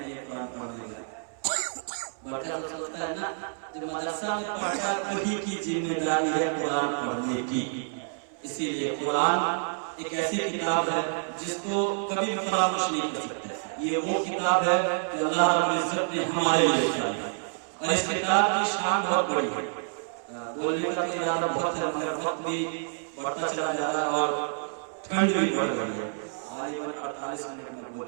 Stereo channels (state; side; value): silent; left; 59 dB below the other